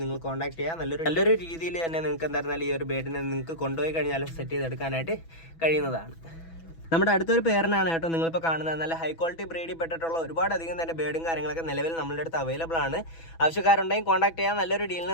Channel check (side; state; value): right; late; 6.1 ms